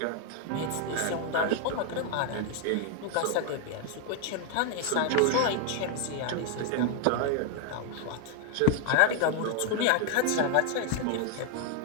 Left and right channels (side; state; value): both; different; correlation 0.00